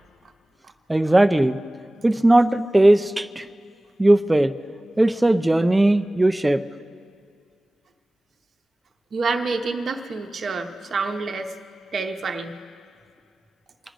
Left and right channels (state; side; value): normal; both; correlation 0.98